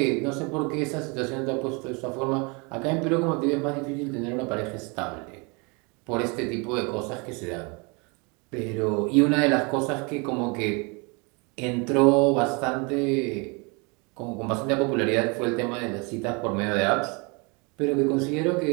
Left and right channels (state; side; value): quieter; left; 30.7 dB